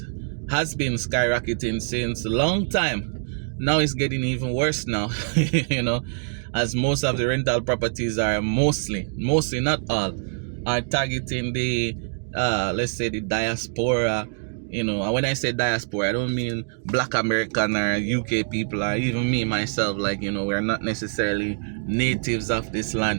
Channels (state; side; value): silent; left; digital silence